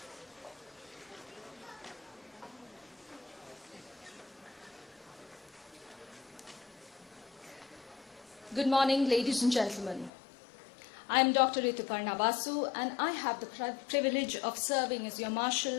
Good morning, ladies and gentlemen. I am Dr. Rituparna Basu, and I have the privilege of serving as your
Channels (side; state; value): right; drops out; at 10.1 s